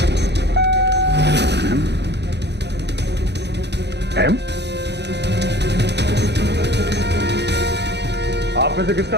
एम? आप में से किसका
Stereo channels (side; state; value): left; late; 0.50 ms